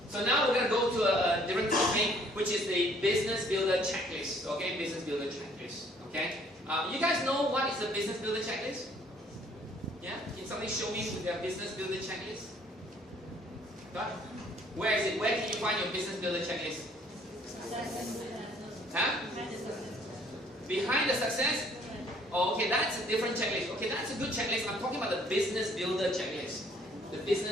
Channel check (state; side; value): normal; both; correlation 0.60